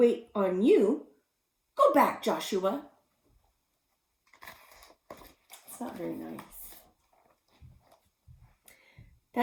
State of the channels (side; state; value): both; identical; correlation 1.00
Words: on you. Go back, Joshua." It's not very nice.